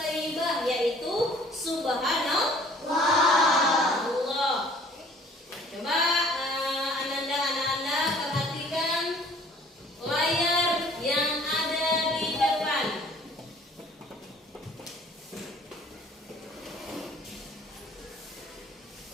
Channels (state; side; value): normal; both; correlation 0.54